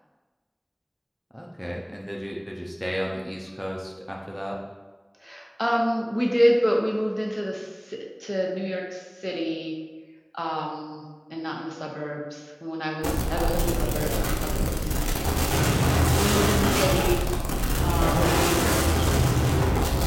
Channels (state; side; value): identical; both; correlation 1.00